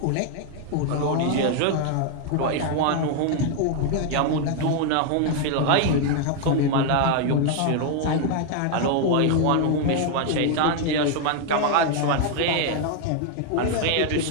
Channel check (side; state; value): both; different; correlation 0.00